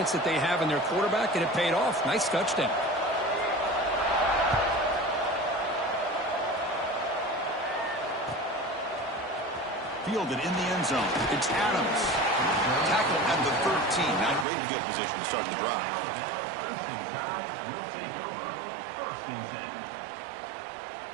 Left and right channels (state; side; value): drops out; left; at 14.5 s